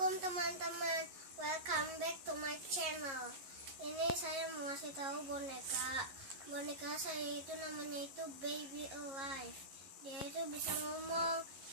teman-teman, welcome back to my channel. Ini saya mau kasih tahu boneka saya itu namanya itu Baby Alive. Dia itu bisa ngomong,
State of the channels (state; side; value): late; left; 11 ms